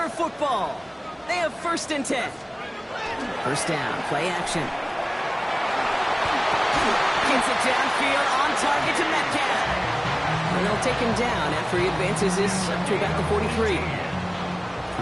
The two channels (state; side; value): identical; both; correlation 1.00